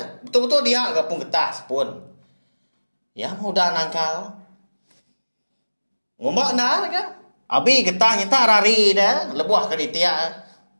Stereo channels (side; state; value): both; inverted; correlation -1.00